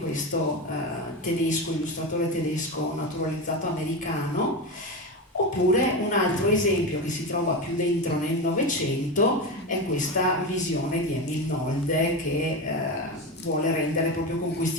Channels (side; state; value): both; normal; correlation 0.19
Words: illustratore tedesco naturalizzato americano. Oppure un altro esempio che si trova più dentro nel Novecento è questa visione di Emil Nolde che vuole rendere proprio con